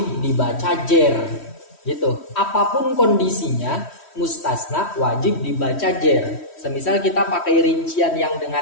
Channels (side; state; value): right; late; 3.1 ms